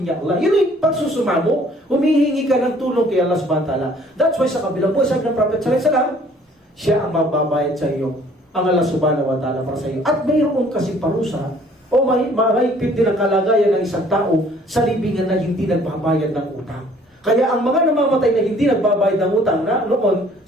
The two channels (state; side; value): normal; both; correlation 0.57